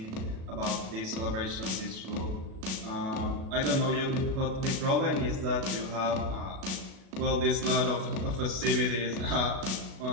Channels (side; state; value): left; late; 37 ms